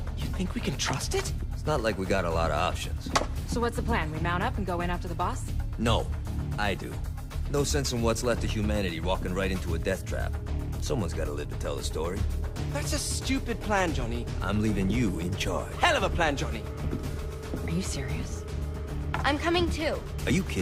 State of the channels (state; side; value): identical; both; correlation 1.00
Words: You think we can trust it? It's not like we got a lot of options. So what's the plan? We mount up and go in after the boss? No, I do. No sense in what's left of humanity walking right into a death trap. Someone's gotta live to tell the story. That's a stupid plan, Johnny. I'm leaving you in charge. Hell of a plan, Johnny. Are you serious? I'm coming too. Are you